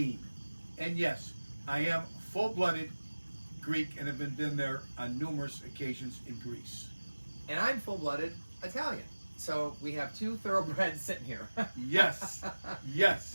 And yes, I am full-blooded Greek and have been there on numerous occasions in Greece. And I'm full-blooded Italian. So we have two thoroughbreds sitting here. Yes,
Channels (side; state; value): both; inverted; correlation -1.00